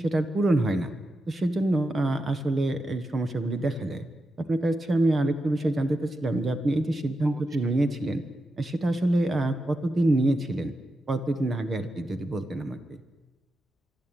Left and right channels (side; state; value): both; normal; correlation 0.88